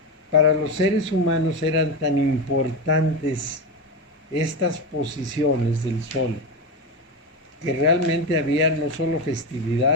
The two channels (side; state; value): both; normal; correlation 0.16